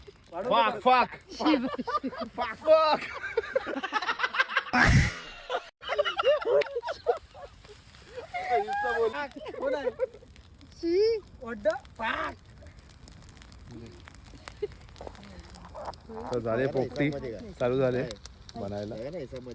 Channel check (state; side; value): identical; both; correlation 1.00